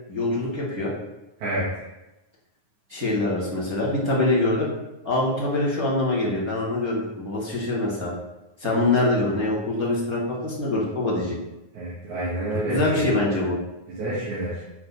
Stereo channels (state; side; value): late; left; 9.5 ms